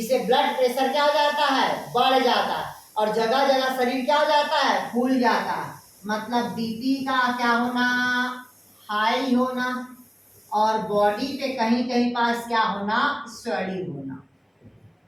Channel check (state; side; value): identical; both; correlation 1.00